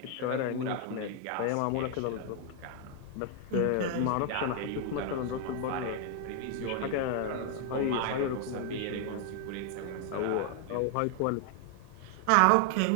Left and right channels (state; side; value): different; both; correlation 0.00